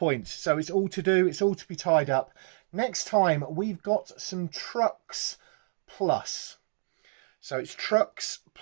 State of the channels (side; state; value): left; silent; digital silence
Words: So it's all to do, it's all to be tied up. Next time we've got some trucks plus. So it's trucks